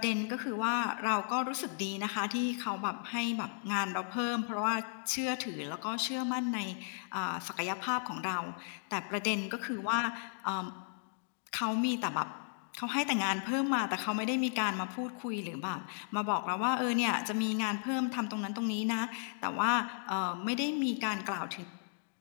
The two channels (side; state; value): right; silent; digital silence